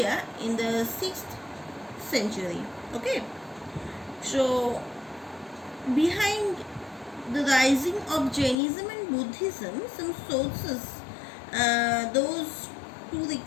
in the 6th century. Okay, so behind the rising of Jainism and Buddhism, some sources, those to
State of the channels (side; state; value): right; drops out; at 8.6 s